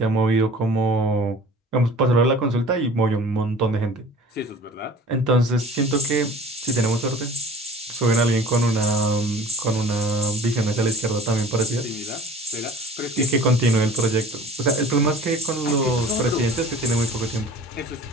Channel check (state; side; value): normal; both; correlation 0.44